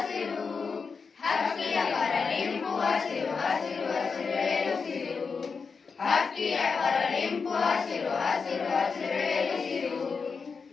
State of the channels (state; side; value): quieter; right; 5.2 dB